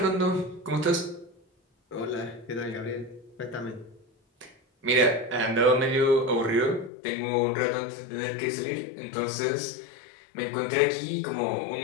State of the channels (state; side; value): drops out; right; at 6.9 s